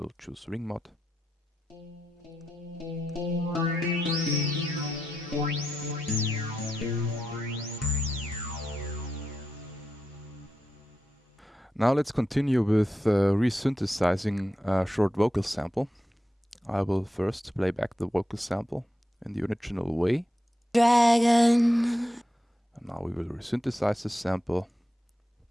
choose ring mod. Now let's continue with resynthesizing a short vocal sample. I will first play back the vocal sample in the original way. Dragon. And now we will resynthesize this sample.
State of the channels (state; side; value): normal; both; correlation 0.87